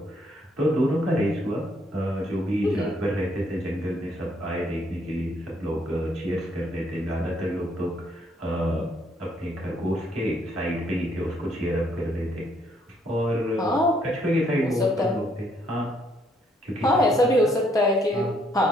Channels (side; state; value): both; normal; correlation 0.70